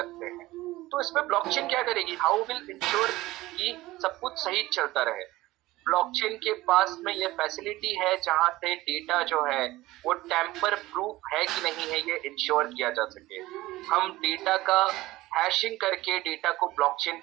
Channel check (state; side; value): quieter; left; 18.1 dB